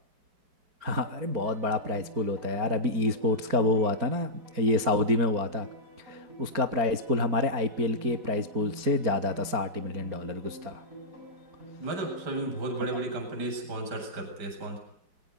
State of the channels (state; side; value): late; left; 4.4 ms